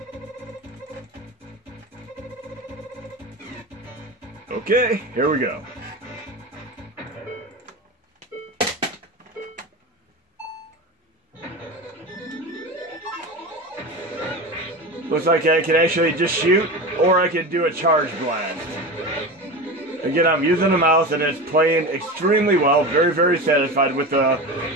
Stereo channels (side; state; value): both; normal; correlation 0.26